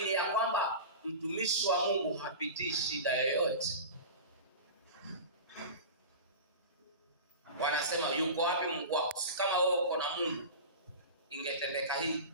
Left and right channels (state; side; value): inverted; both; correlation -0.30